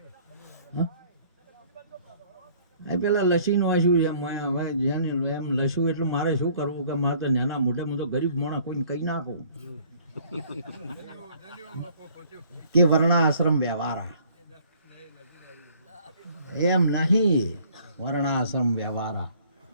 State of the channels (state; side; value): inverted; both; correlation -0.57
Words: પેલા લસી નો આશું હવે જેને એમ લસું એટલું મારે શું કરવું કે મારે તો નાના મોઢે તો ગરીબ મોણા કોઈને કહી નાખું કે વર્ણાશ્રમ વ્યવહારા. એમ નહીં, વર્ણાશ્રમ વ્યવહારા.